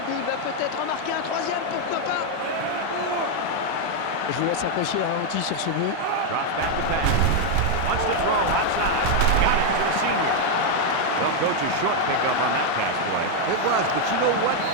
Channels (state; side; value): different; both; correlation 0.00